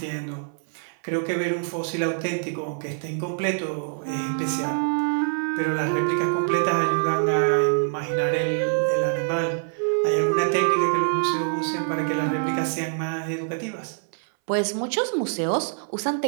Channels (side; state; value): left; silent; 62 dB below the other